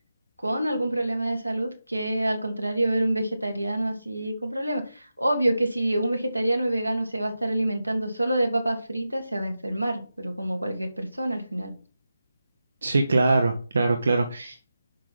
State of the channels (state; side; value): inverted; both; correlation -0.91